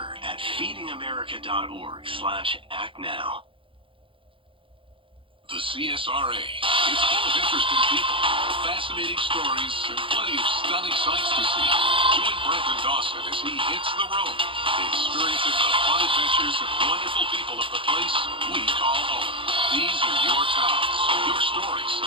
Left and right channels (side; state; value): left; late; 0.25 ms